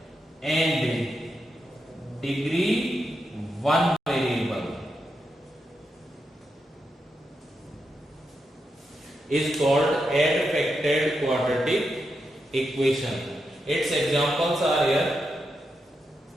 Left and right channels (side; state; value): both; normal; correlation 0.85